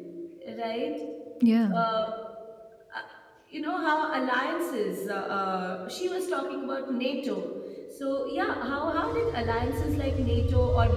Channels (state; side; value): identical; both; correlation 1.00